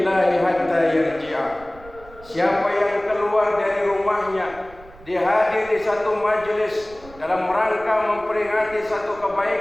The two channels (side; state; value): right; noise; rumble, 21 dB below the sound